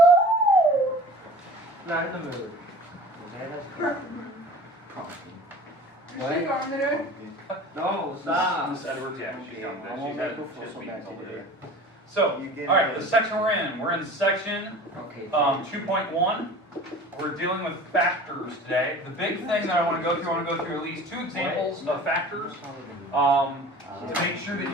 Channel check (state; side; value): normal; both; correlation 0.41